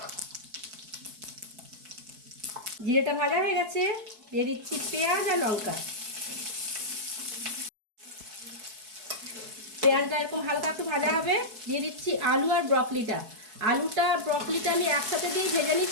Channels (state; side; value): late; left; 4.6 ms